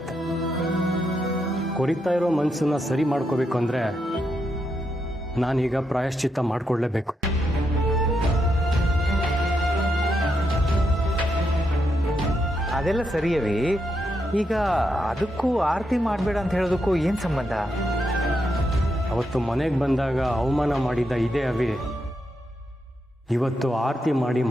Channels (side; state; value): both; normal; correlation 0.82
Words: ಕೊರಿತಾ ಇರೋ ಮನಸ್ಸನ್ನ ಸರಿ ಮಾಡ್ಕೋಬೇಕು ಅಂದರೆ ನಾನೀಗ ಪ್ರಾಯಶ್ಚಿತ್ತ ಮಾಡಿಕೊಳ್ಳೇಬೇಕು. ಅದೆಲ್ಲ ಸರಿಯವೇ. ಈಗ ಅದಕ್ಕೂ ಆರತಿ ಮಾಡಬೇಡ ಅಂತ ಹೇಳೋದಕ್ಕೂ ಏನು ಸಂಬಂಧ? ಅವತ್ತು ಮನೆಗೆ ಬಂದಾಗ ಅವಮಾನ ಮಾಡಿದ್ದ ಇದೇ ಅವಿ ಇವತ್ತು ಆರತಿ ಮಾಡಿ